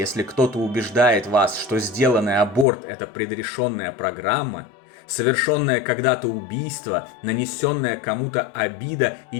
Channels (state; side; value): drops out; right; at 2.7 s